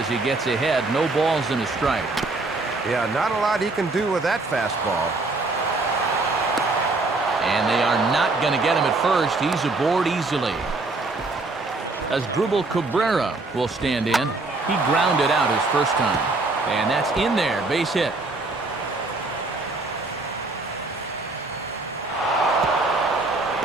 he gets ahead. No balls and a strike. Yeah, not a lot he can do with that fastball. And they are not going to get him at first. He's aboard easily. As Drupal Cabrera will stand in. He grounded out his first time. And that's in there. Base hit.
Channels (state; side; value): quieter; left; 3.3 dB